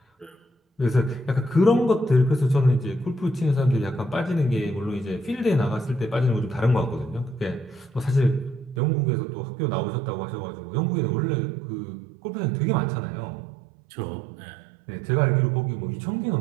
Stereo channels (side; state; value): left; drops out; at 8.8 s